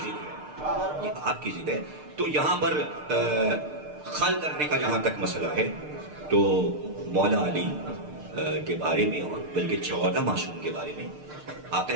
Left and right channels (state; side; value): late; left; 6.6 ms